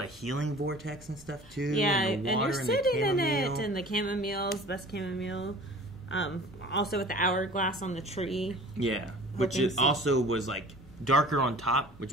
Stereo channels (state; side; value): normal; both; correlation 0.45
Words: a healing vortex and stuff, too. Yeah, and the water and you're sitting in chamomile. it, and the chamomile's best chamomile. Also with the hourglass on the tree. Yeah, which also was, like, darker on top, which